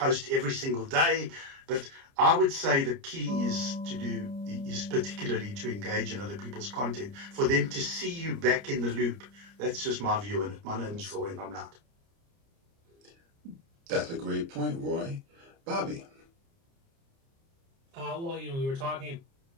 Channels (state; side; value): late; left; 30 ms